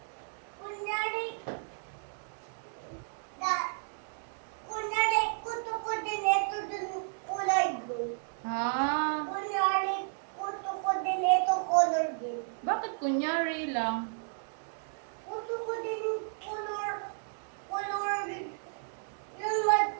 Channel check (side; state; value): left; silent; digital silence